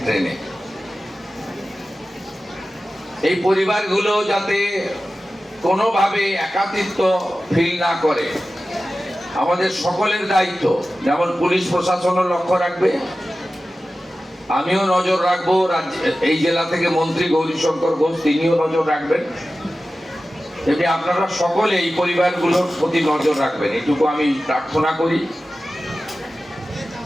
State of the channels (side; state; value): both; normal; correlation 0.95